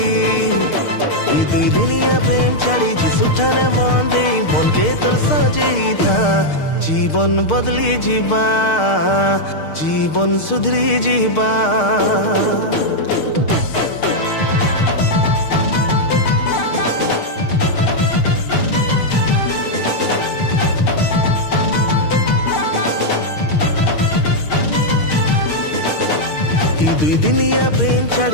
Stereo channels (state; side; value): late; right; 6.5 ms